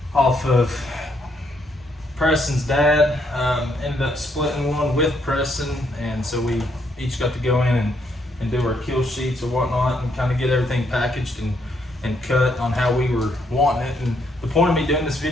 off of Preston's dad. Ended up splitting one with Preston, and so we each got to go in and do our kill sheets or whatnot, and kind of get everything packaged and cut on how we were wanting it. And the point of me doing this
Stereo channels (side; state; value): both; normal; correlation 0.73